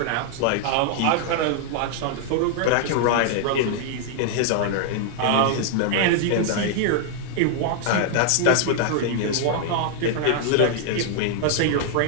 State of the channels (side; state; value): both; different; correlation 0.00